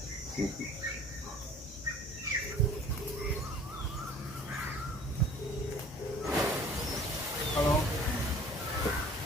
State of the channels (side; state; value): both; normal; correlation 0.49